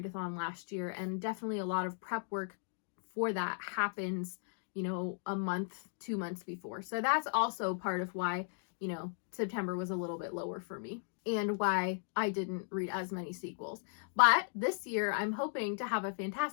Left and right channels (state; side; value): silent; right; digital silence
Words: last year, and definitely a lot of prep work for that happens a month, 2 months before. So that's also part of why, September was a little bit lower for me and why I didn't read as many sequels. But this year, I'm hoping to have a